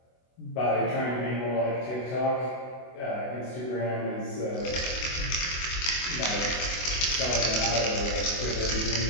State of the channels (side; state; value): right; late; 24 ms